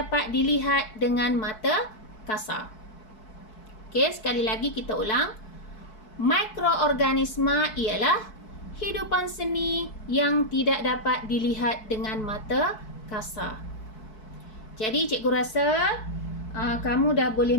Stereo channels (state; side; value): late; right; 4.6 ms